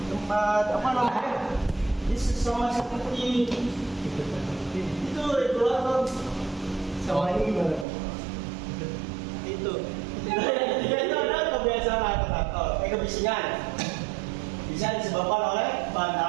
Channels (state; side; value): drops out; left; at 7.9 s